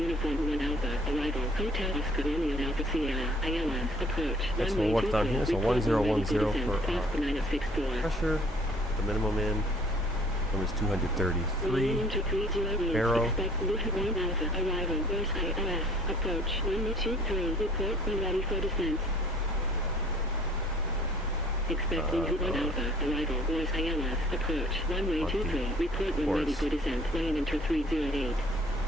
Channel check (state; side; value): normal; both; correlation 0.55